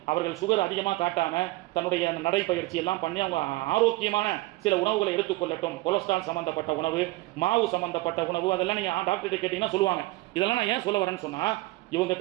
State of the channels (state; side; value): quieter; left; 20.4 dB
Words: அவர்கள் சுகர் அதிகமாக காட்டாம தன்னுடைய நடைப்பயிற்சி எல்லாம் பண்ணி அவங்க ஆரோக்கியமான சில உணவுகளை எடுத்துக்கொள்ளட்டும். கொலஸ்ட்ரால் சம்பந்தப்பட்ட உணவு, மாவு சம்பந்தப்பட்ட உணவு, அதெல்லாம் நீங்க டாக்டர் கேட்டீங்கன்னா சொல்லுவாங்க. இதெல்லாம் நான் ஏன் சொல்ல வரேன்னு சொன்னா, இவங்க